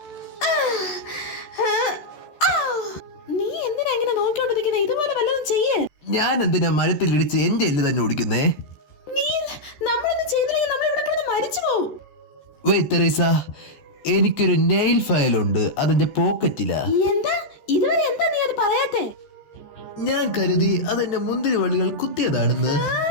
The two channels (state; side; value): late; right; 14 ms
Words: നീ എന്തിനാ ഇങ്ങനെ നോക്കിക്കൊണ്ടിരിക്കുന്നത്? ഇതുപോലെ വല്ലതും ചെയ്യേ. ഞാൻ എന്തിനാ മരത്തിലിടിച്ച് എന്റെ എല്ല് തന്നെ ഓടിക്കുന്നേ? നീ നമ്മളൊന്നും ചെയ്തില്ലെങ്കിൽ നമ്മൾ ഇവിടെ കിടന്ന് മരിച്ചു പോവും. വെയ് തെരേസ, എനിക്കൊരു നെയിൽ ഫയൽ ഉണ്ട്, അതിന്റെ പോക്കറ്റിലാ. എന്താ ഇതുവരെ എന്താ നീ അത് പറയാത്തെ? ഞാൻ കരുതി അതെന്റെ മുന്തിരി വള്ളികൾ കുത്തിയതാണെന്ന്.